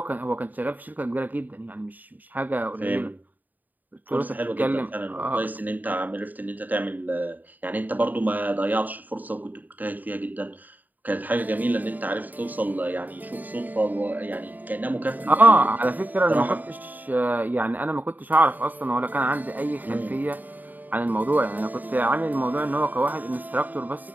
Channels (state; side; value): late; left; 0.084 ms